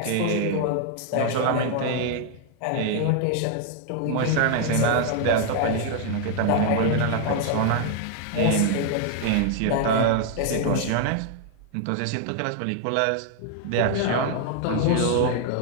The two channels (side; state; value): both; different; correlation 0.00